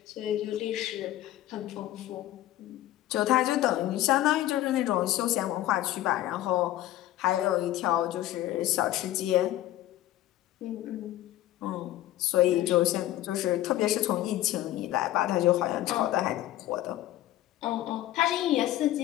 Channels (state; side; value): quieter; right; 14.4 dB